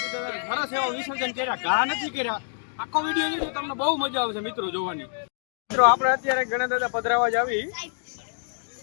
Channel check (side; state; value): right; silent; digital silence